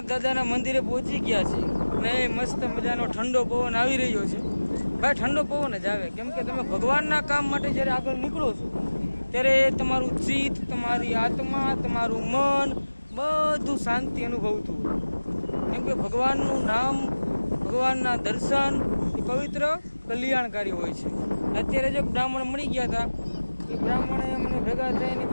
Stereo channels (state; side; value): inverted; both; correlation -1.00